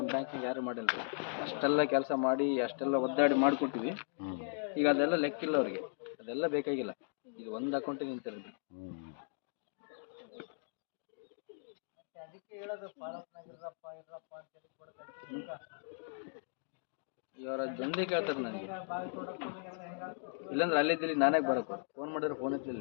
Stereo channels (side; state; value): right; silent; digital silence